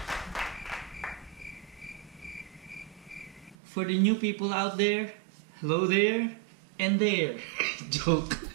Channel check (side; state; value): left; drops out; at 3.6 s